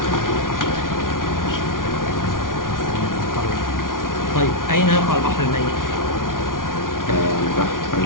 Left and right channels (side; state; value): right; late; 0.89 ms